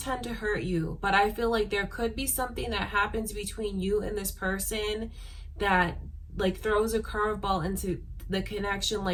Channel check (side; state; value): both; identical; correlation 1.00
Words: to hurt you. But I feel like there could be something that happens between you and this person that like throws a curveball into the connection.